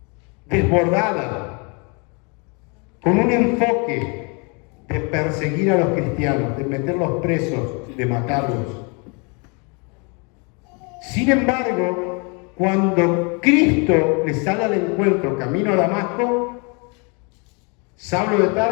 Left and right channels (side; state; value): right; quieter; 32.9 dB